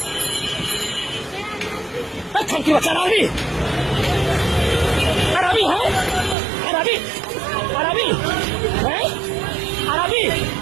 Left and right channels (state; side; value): drops out; left; at 6.4 s